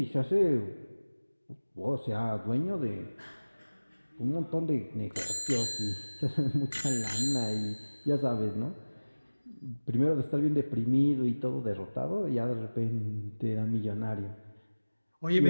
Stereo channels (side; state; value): both; inverted; correlation -1.00